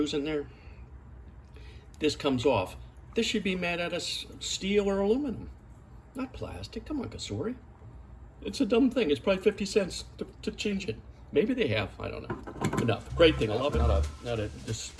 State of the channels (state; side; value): identical; both; correlation 1.00